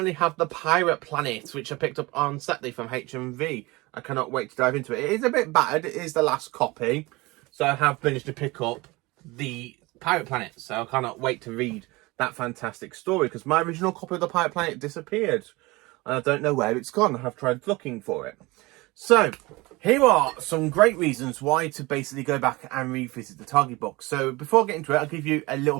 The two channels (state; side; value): quieter; left; 22.6 dB